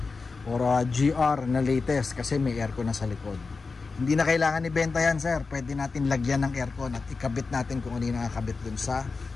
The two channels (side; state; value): right; quieter; 4.3 dB